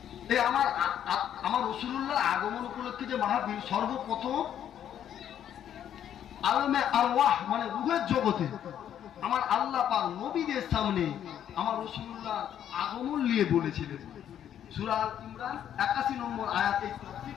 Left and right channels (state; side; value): quieter; right; 10.0 dB